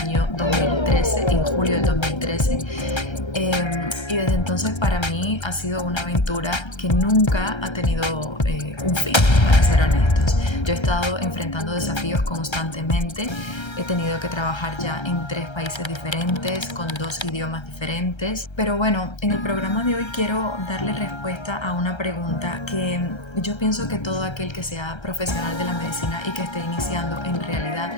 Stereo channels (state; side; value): late; right; 1.3 ms